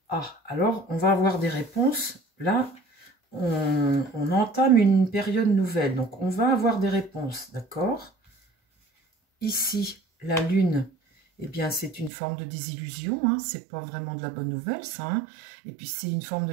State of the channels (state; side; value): drops out; left; at 12.1 s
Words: Ah, alors on va avoir des réponses. Là, on entame une période nouvelle. Donc, on va avoir des réponses, d'accord? Ici, la lune, eh bien, c'est une forme de désillusion. Hein, c'est pas vraiment de la bonne nouvelle, ça. Hein. Et puis, c'est une forme de